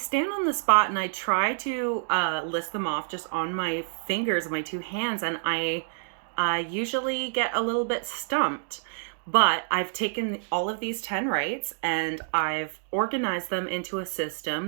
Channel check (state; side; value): silent; left; digital silence